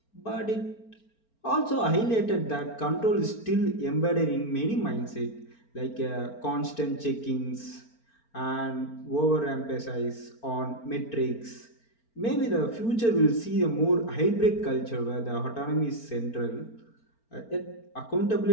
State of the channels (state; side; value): late; right; 4.4 ms